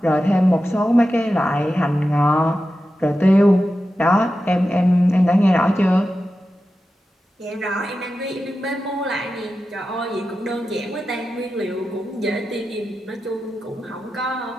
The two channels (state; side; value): normal; both; correlation 0.92